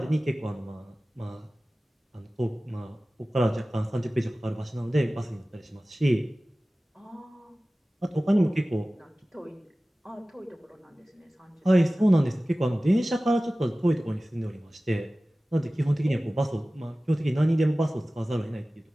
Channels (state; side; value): normal; both; correlation 0.97